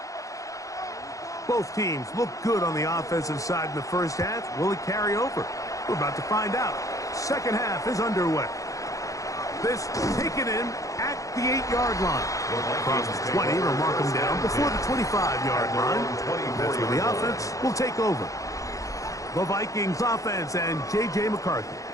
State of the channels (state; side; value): late; right; 0.16 ms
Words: Both teams look good on the offensive side in the first half. Will it carry over? We're about to find out. Second half is underway. This taken in at the 8-yard line. Across the 20, they'll mark them down before the 25-yard line. That's where the offense will take over. The Vikings offense and J.J. McCarthy